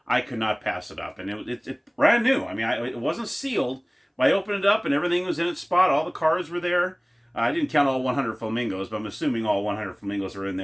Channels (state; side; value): identical; both; correlation 1.00